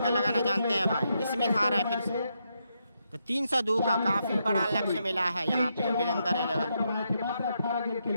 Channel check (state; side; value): inverted; both; correlation -0.81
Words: लगाना जानते हैं भाई। इसमें था रहा है फिर से, तो 302 का काफी बड़ा लक्ष्य मिला है यहाँ पे वीरेंद्र 11।